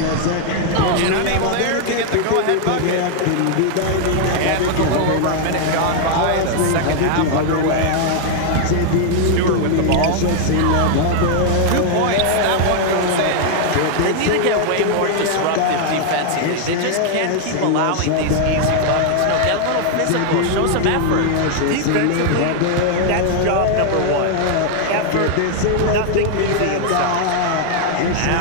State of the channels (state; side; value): different; both; correlation 0.00